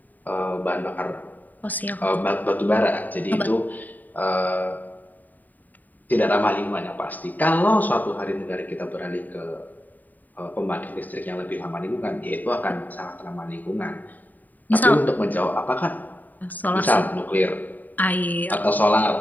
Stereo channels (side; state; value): right; late; 0.084 ms